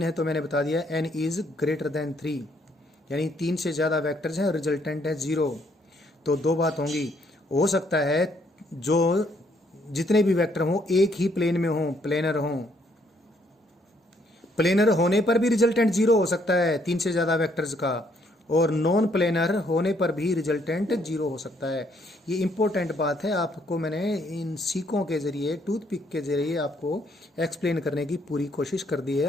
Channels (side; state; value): both; normal; correlation 0.69